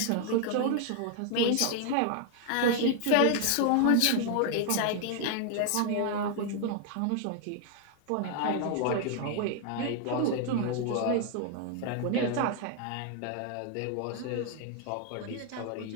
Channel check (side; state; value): both; different; correlation 0.00